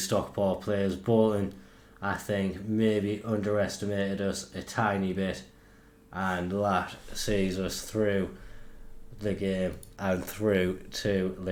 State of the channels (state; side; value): identical; both; correlation 1.00